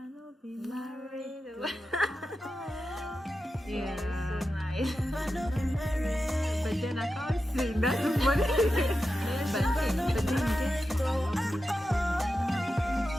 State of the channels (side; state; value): both; normal; correlation 0.91